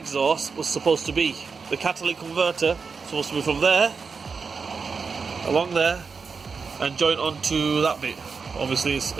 was supposed to be. The catalytic converter supposed to be from there, along there, and joint onto that bit. Obviously,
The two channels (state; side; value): quieter; left; 5.2 dB